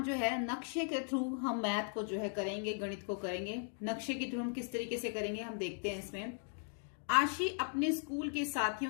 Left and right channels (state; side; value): silent; right; 53 dB below the other